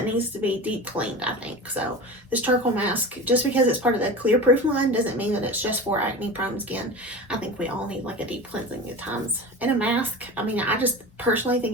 needs to be deep cleaned, I think. So this charcoal mask, just because it's part of the Clearproof line, doesn't mean that it's just for acne prone skin. I think we all need like a deep cleansing at times. And a mask, I mean, I just personally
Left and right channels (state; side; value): normal; both; correlation 0.31